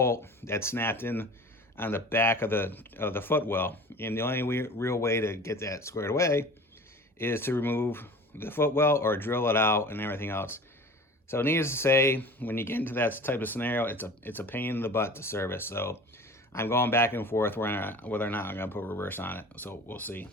that snapped in on the back of the footwell. And the only real way to get that squared away is to remove the footwell or drill it out and everything else. So needless to say, when you get into that type of scenario, it's a pain in the butt to service. So I'm going back and forth whether or not I'm going to put reverse on it. So we'll see.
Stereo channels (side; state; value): both; normal; correlation 0.40